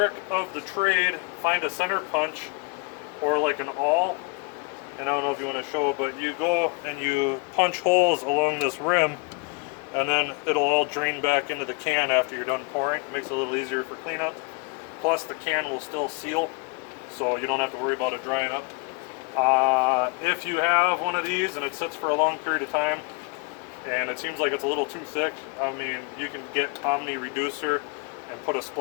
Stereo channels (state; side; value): quieter; right; 32.4 dB